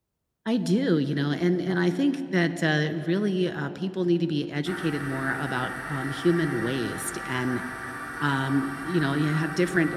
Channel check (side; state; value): both; identical; correlation 1.00